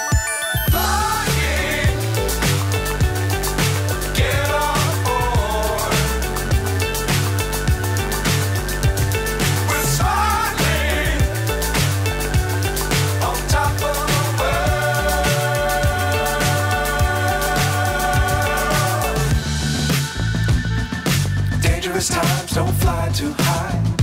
Times don't fly too high.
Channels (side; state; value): both; identical; correlation 1.00